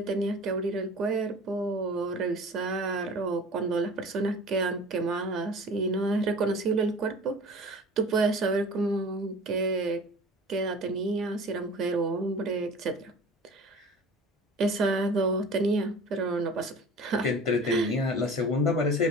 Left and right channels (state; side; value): normal; both; correlation 0.41